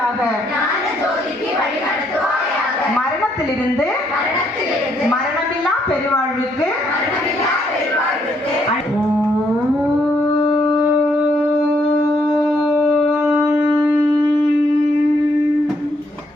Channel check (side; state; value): both; normal; correlation 0.72